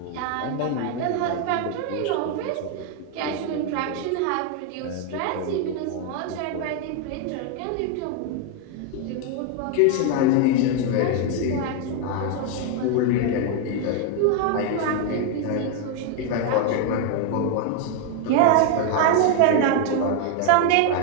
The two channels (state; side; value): different; both; correlation 0.01